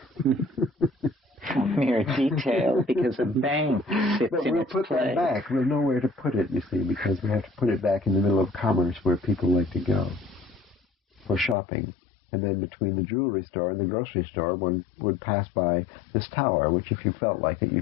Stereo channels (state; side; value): drops out; right; at 11.6 s